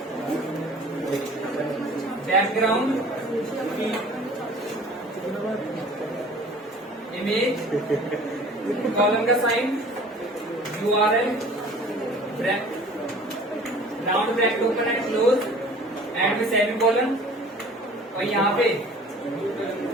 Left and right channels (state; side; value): normal; both; correlation 0.47